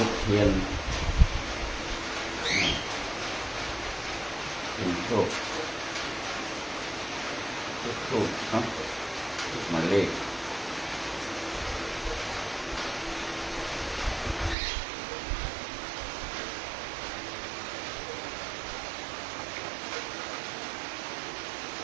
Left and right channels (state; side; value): drops out; left; at 14.6 s